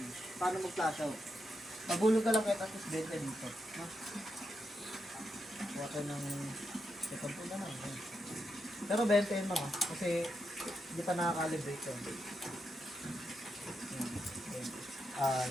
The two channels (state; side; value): normal; both; correlation 0.84